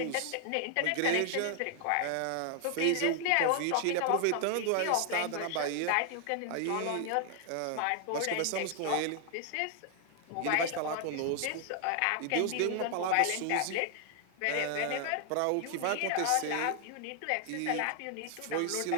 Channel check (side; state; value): both; different; correlation 0.00